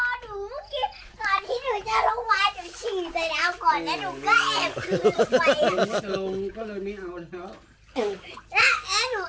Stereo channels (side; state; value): both; identical; correlation 1.00